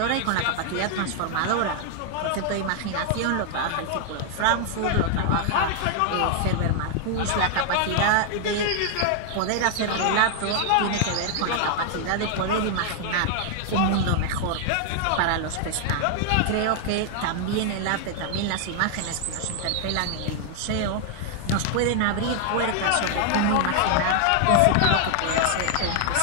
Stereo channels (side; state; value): both; different; correlation 0.00